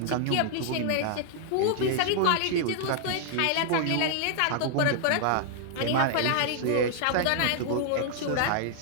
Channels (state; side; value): different; both; correlation -0.01